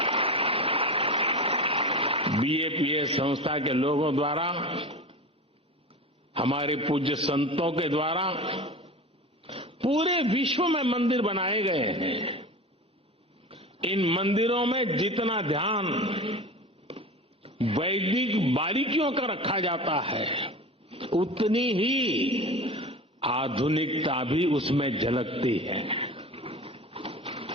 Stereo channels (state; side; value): normal; both; correlation 0.31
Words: बीएपीएस संस्था के लोगों द्वारा, हमारे पूज्य संतों के द्वारा पूरे विश्व में मंदिर बनाए गए हैं। इन मंदिरों में जितना ध्यान वैदिक बारीकियों का रखा जाता है, उतनी ही आधुनिकता भी उसमें झलकती है।